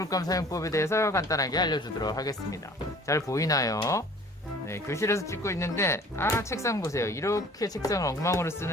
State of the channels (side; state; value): both; normal; correlation 0.49